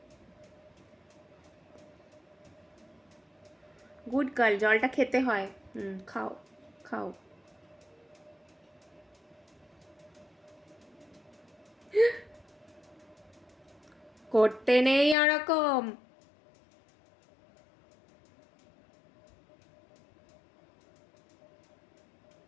গুড গার্ল, জলটা খেতে হয়। খাও খাও। করতে নেই ওরকম।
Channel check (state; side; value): drops out; right; at 15.2 s